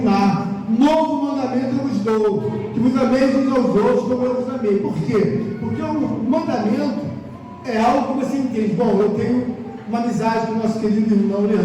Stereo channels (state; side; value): identical; both; correlation 1.00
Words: Novo mandamento eu vos dou, que vos ameis uns aos outros como eu vos amei. Por quê? Porque o mandamento é algo que você entende. Bom, eu tenho uma amizade com o nosso querido irmão